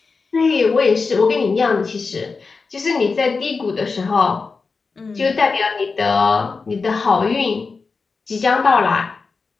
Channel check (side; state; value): right; quieter; 4.5 dB